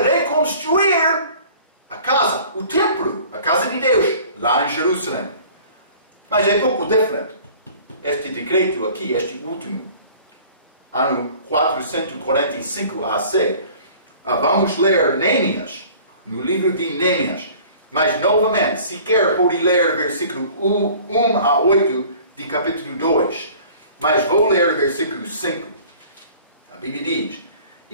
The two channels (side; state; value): both; inverted; correlation -0.48